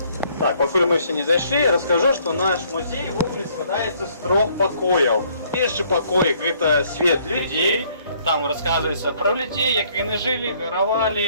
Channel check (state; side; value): inverted; both; correlation -0.64